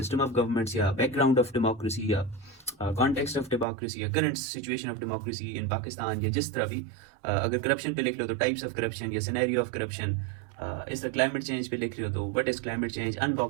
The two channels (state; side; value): drops out; left; at 3.7 s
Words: ऑफ गवर्नमेंट्स, या बैकग्राउंड ऑफ डेमोक्रेसी, या कॉन्टेक्स्ट ऑफ डेमोक्रेसी, या current situation of democracy in Pakistan, या जिस तरह भी। अगर करप्शन पे लिख लो तो टाइप्स ऑफ करप्शन या सिनेरियो ऑफ करप्शन। इस तरह क्लाइमेट चेंज पे लिख रहे हो तो what is climate change,